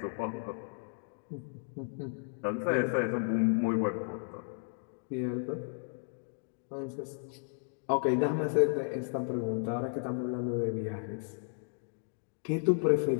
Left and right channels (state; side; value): silent; right; 55 dB below the other